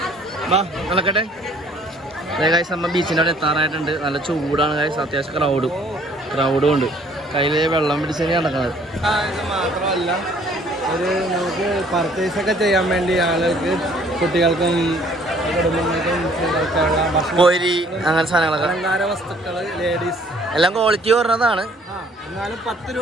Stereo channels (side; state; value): both; normal; correlation 0.59